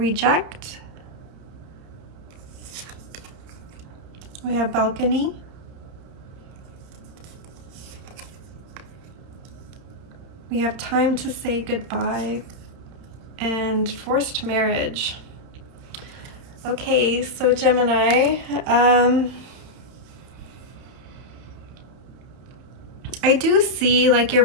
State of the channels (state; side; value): late; left; 31 ms